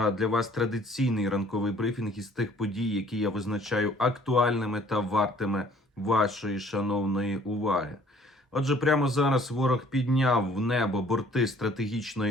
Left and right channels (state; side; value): normal; both; correlation 0.57